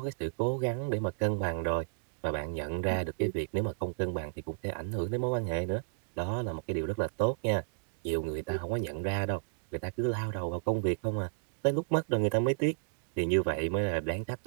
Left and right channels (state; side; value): silent; left; digital silence